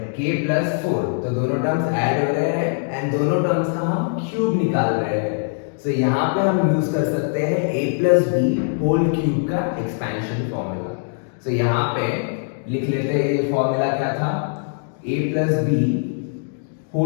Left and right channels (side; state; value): right; silent; digital silence